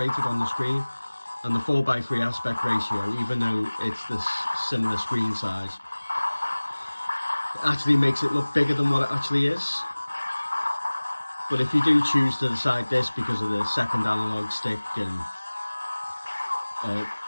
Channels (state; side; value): inverted; both; correlation -1.00